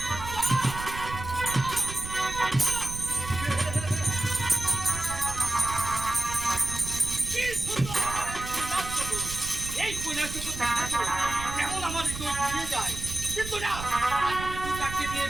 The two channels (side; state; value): right; noise; rumble, 9 dB below the sound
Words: কি সুন্দর নাচছো তো। এই কইনাচো তো কেমন আমার হৃদয় ঘুরিয়ে যায়। কিন্তু না, আজ আমি দুর্গাকে বিয়ে